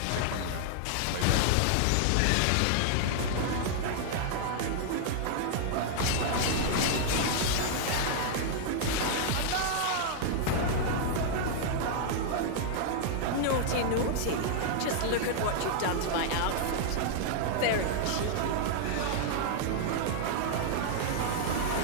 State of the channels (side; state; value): both; different; correlation -0.01